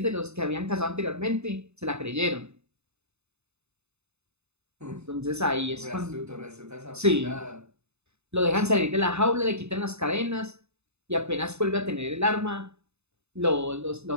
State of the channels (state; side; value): late; left; 0.81 ms